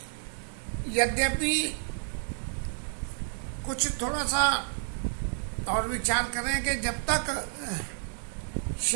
यद्यपि कुछ थोड़ा सा और विचार करें कि जब तक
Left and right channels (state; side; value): silent; left; 55 dB below the other